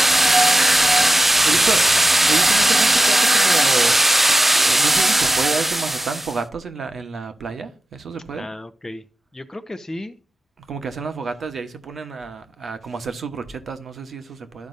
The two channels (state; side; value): normal; both; correlation 0.90